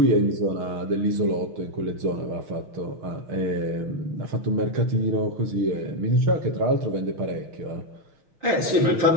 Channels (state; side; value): late; left; 6.4 ms